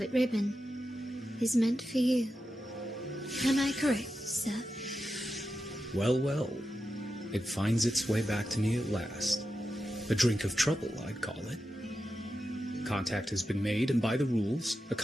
ribbon is meant for you. Am I correct, sir? Well, well. It finds its way back to me at last. A drink of trouble, I'd call it. Contact has been made, and by the rules, a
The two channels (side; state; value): both; normal; correlation 0.90